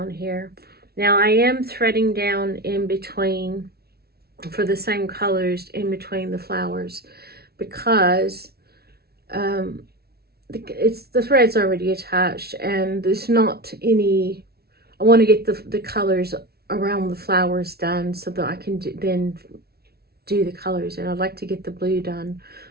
here. Now I am threading down in between for the same colors in between the flowers, because the thread's already attached, and there's not any. I want to get the colors around the flowers done so that I can then do the colors, and I'd like to get the blue done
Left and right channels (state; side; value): late; left; 0.45 ms